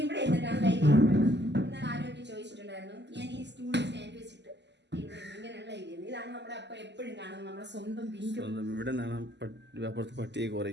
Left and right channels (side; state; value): left; late; 0.51 ms